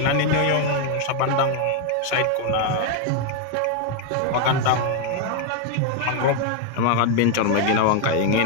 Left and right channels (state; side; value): different; both; correlation 0.01